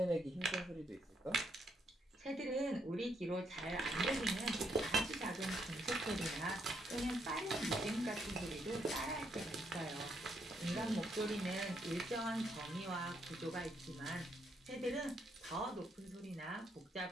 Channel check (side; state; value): both; normal; correlation 0.75